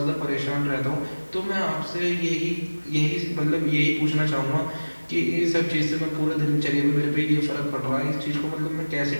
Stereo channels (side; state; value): both; inverted; correlation -1.00